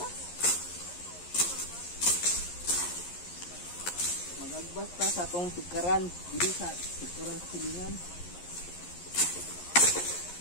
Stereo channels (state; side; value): late; right; 11 ms